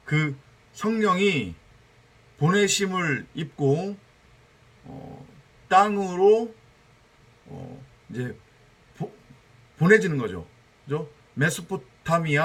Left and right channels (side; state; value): both; identical; correlation 1.00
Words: 그 성령이 보내심을 입고 땅으로 이제 보내지는 거죠. 그죠?